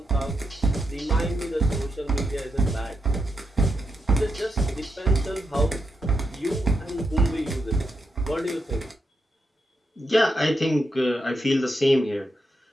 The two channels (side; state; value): both; normal; correlation 0.83